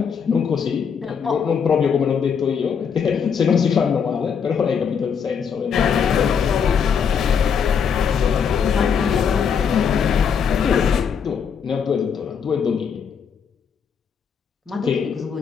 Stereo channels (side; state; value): right; quieter; 6.8 dB